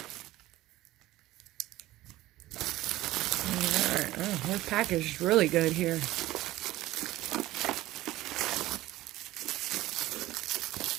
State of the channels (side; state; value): left; quieter; 16.5 dB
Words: Oh, we're packaged really good here. Let's